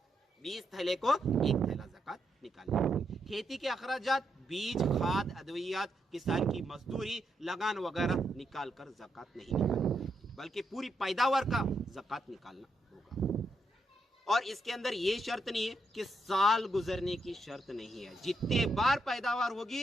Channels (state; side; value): normal; both; correlation 0.80